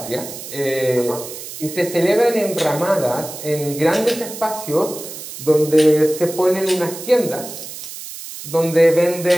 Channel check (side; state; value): right; noise; hiss, 11 dB below the sound